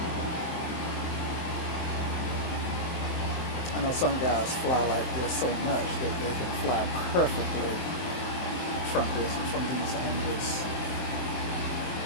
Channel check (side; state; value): right; late; 23 ms